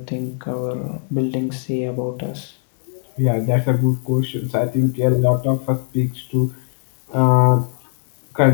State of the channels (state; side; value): silent; right; 64 dB below the other